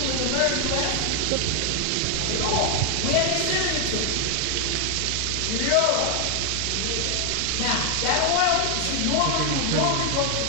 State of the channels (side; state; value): both; different; correlation 0.00